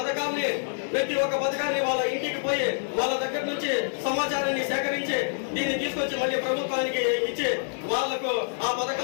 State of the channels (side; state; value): right; silent; 56 dB below the other